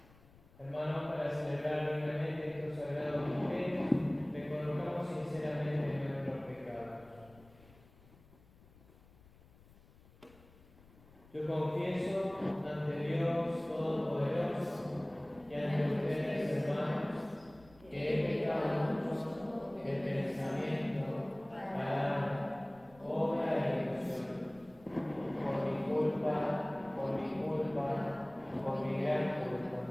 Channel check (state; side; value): noise; left; rumble, 25 dB below the sound